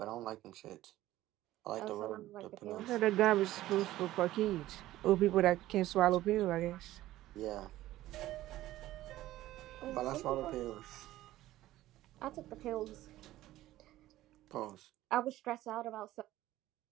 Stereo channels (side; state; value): left; quieter; 15.3 dB